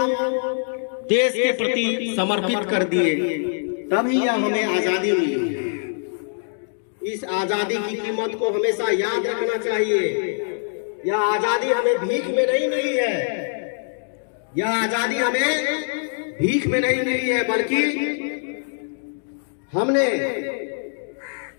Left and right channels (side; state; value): right; silent; digital silence